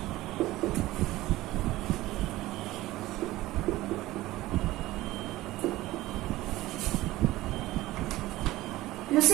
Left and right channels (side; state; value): left; quieter; 17.3 dB